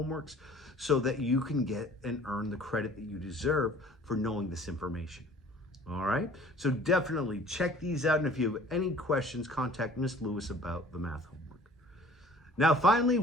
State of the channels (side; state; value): both; normal; correlation 0.50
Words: so that you can get and earn the credit that you deserve for knowing this information. All right, so definitely check these out, and if you have any questions, contact Miss Lewis about the math homework. Now, finally,